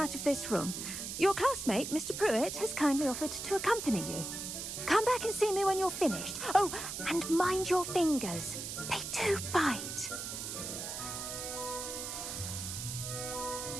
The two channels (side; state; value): right; noise; hiss, 6 dB below the sound